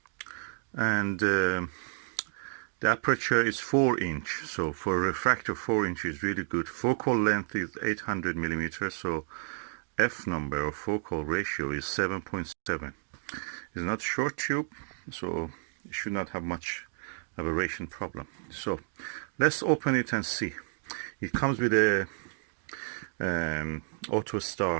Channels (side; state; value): left; silent; digital silence